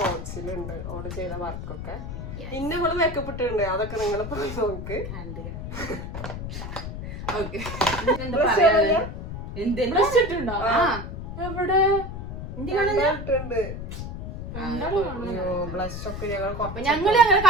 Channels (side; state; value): left; noise; rumble, 7 dB below the sound